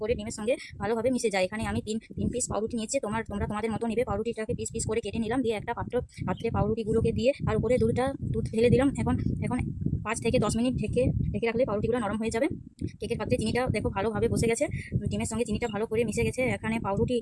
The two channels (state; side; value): identical; both; correlation 1.00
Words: করে ডিমের সঙ্গে ভালোভাবে মিশে যায়। এখানে আমি তিন পিস পাউরুটি নিয়েছি। তোমরা তোমাদের মতো নেবে। পাউরুটিটাকে পিস পিস করে কেটে নিলাম। দিয়ে একটা পাত্রে পাউরুটিগুলোকে দিয়ে তার উপরে দুধ ঢেলে দিলাম। এখন 5 থেকে 10 মিনিট ঢেকে রাখলে পাউরুটিগুলো নরম হয়ে যাবে। কেকের পাত্রে চিনিটা দেখো ভালোভাবে বসে গেছে। ডিমের সঙ্গে চিনিটা ভালো করে মিশে গেছে। এখানে পাউরুটি